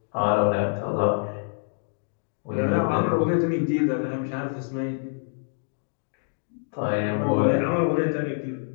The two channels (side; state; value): right; silent; digital silence